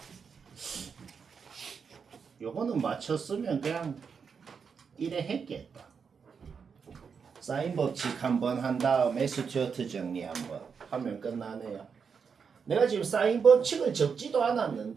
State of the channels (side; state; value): left; quieter; 6.1 dB